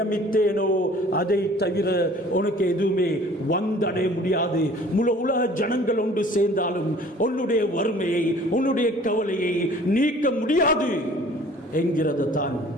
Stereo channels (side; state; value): both; normal; correlation 0.50